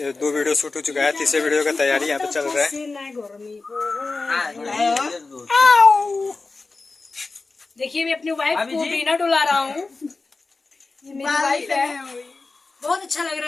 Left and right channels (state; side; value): quieter; right; 3.8 dB